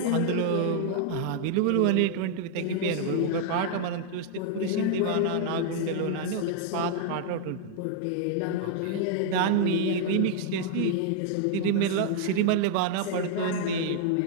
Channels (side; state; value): both; different; correlation 0.00